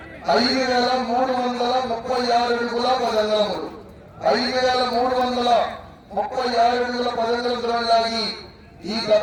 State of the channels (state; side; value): identical; both; correlation 1.00